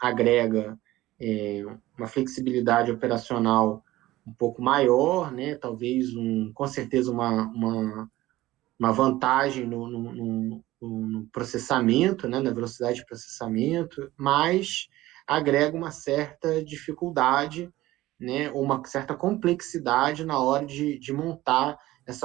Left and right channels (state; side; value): quieter; left; 16.8 dB